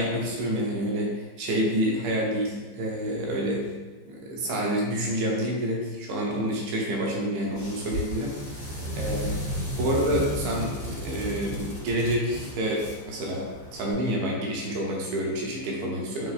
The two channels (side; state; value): left; late; 15 ms